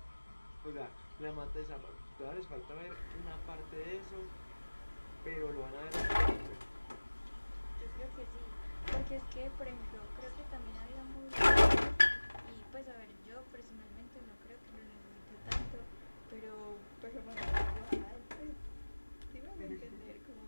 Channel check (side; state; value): both; inverted; correlation -1.00